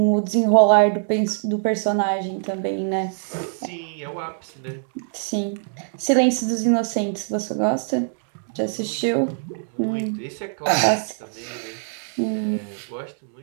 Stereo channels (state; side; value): silent; left; digital silence